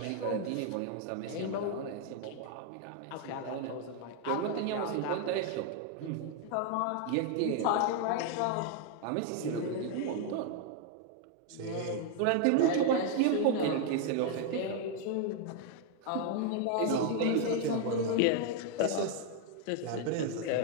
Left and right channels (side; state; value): both; different; correlation 0.00